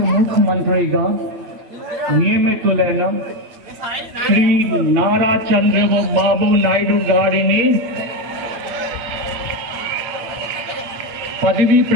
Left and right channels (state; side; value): late; left; 8.5 ms